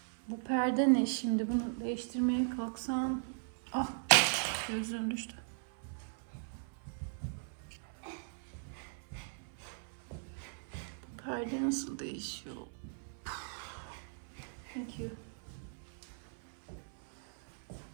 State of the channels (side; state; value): left; silent; 52 dB below the other